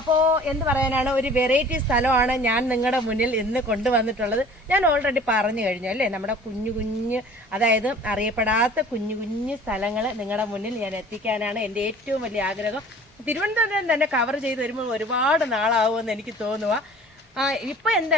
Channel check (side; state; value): both; normal; correlation 0.47